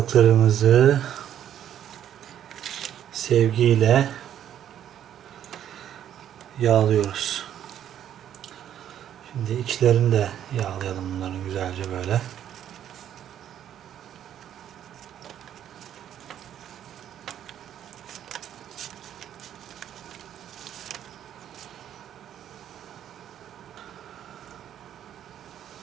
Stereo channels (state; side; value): quieter; left; 10.4 dB